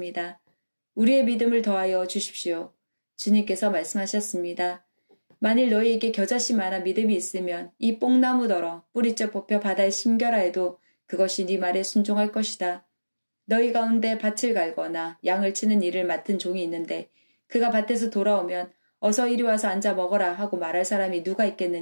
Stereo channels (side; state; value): both; inverted; correlation -1.00